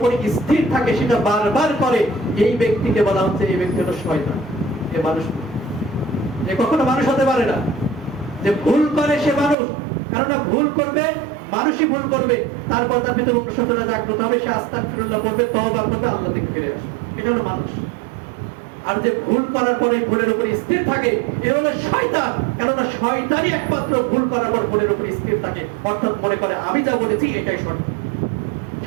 স্থির থাকে, সেটা বারবার করে, এই ব্যক্তিকে বলা হচ্ছে এই ব্যক্তি হলো শয়তান। এ মানুষ, এ কখনো মানুষ হতে পারে না। যে ভুল করে সে মানুষ, কারণ ভুল করবে, মানুষই ভুল করবে, তারপর তার ভিতরে অনুশোচনা জাগ্রত হবে, সে আস্তাগফিরুল্লাহ করবে, তওবা করবে, আল্লাহর দিকে ফিরে আসবে, এটা হলো মানুষ। আর যে ভুল করার পরে ভুলের উপর স্থির থাকে এ হলো শয়তান। কেননা শয়তানই একমাত্র ভুল করার পর ভুলের উপর স্থির থাকে, অর্থাৎ মনে করে আমি যা বলেছি এটাই সঠিক,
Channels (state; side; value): drops out; left; at 9.6 s